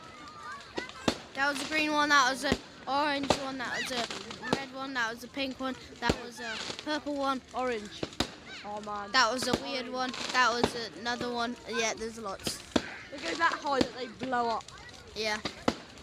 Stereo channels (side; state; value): both; identical; correlation 1.00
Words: That was a green one, that was a orange one, that was a red one, that was a pink one, that was a purple one. Orange. Oh man. That was a weird one, that was another one. Yeah, there's lots. They go that high that they blow up. Yeah.